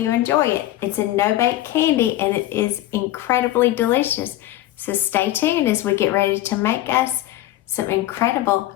enjoy it. It's a no-bake candy and it is incredibly delicious, so stay tuned as we get ready to make us some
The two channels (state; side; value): quieter; right; 14.9 dB